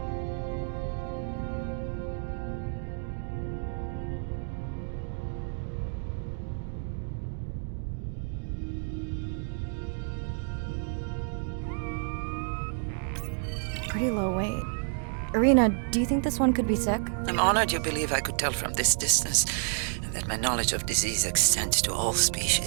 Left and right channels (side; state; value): left; silent; 58 dB below the other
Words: Pretty low weight. Irina, do you think this one could be sick? I'm honored you believe I could tell from this distance that my knowledge of disease extends to all